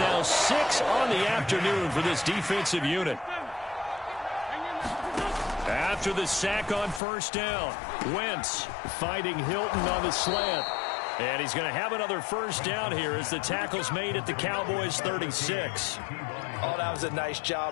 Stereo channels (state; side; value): drops out; right; at 7.0 s